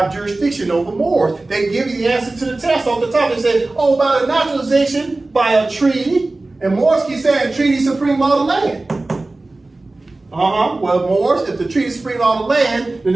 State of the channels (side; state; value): left; quieter; 3.1 dB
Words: jurisdiction over Moors. They give you the answer to the test off the top. They say, oh, by the naturalization, by a treaty. And Moors keep saying treaty supreme law of the land. Well, Moors, if the treaty is supreme law of the land, then